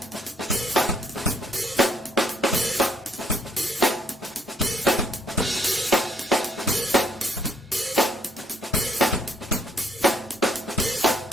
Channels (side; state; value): both; normal; correlation 0.68